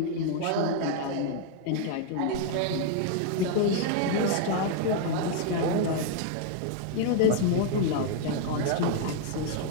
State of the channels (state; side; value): different; both; correlation 0.00